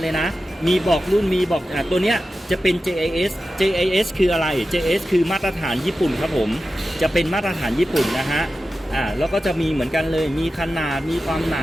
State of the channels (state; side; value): normal; both; correlation 0.93